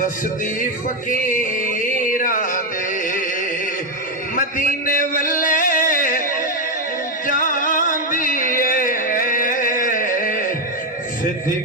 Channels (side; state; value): both; normal; correlation 0.05